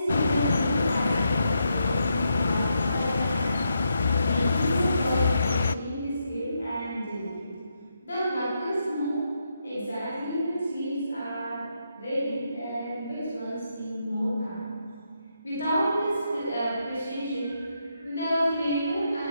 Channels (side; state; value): both; inverted; correlation -0.81